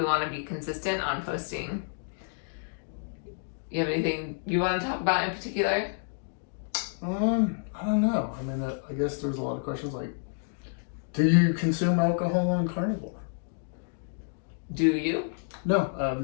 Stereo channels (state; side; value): silent; right; digital silence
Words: want to be consistent on posting. You have anything you want to talk about in particular? I don't know. I mean, I guess there's a lot of questions like, do you consume alcohol on carnivore? Do you? No, I've